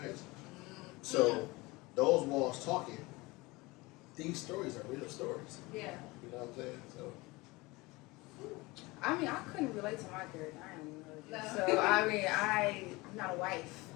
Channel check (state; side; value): quieter; right; 22.9 dB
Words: face. So those walls talking, these stories are real stories. Yeah. You know what I'm saying? So I mean, I couldn't relate to my character. I am No. So I mean, I'm not a wife.